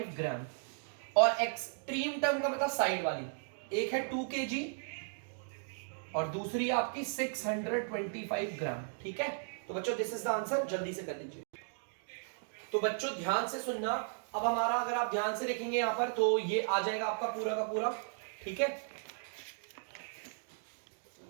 ग्राम। और एक्सट्रीम टर्म का मतलब साइड वाली, एक है 2 kg और दूसरी है आपकी 625 ग्राम, ठीक है। तो बच्चों दिस इज द आंसर, जल्दी से कर लीजिए। तो बच्चों ध्यान से सुनना। अब हमारा अगर आप ध्यान से देखेंगे यहां पर तो ये आ जाएगा आपका पूरा का पूरा, ठीक है।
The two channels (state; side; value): silent; left; digital silence